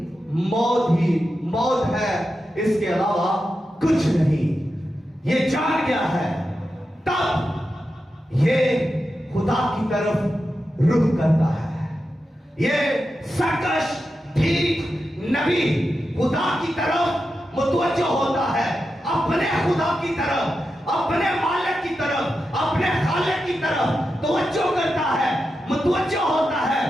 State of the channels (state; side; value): normal; both; correlation 0.89